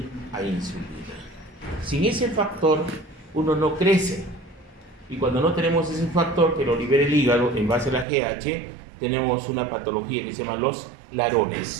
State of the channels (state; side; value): drops out; left; at 8.1 s